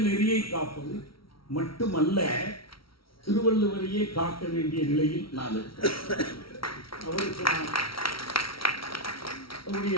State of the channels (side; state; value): right; late; 0.75 ms